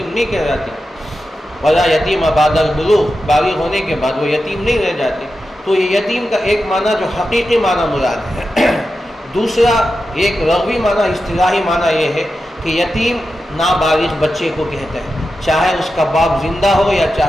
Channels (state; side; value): normal; both; correlation 0.91